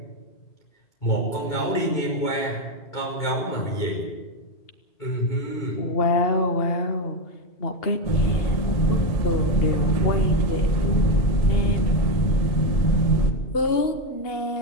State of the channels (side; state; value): right; late; 2.8 ms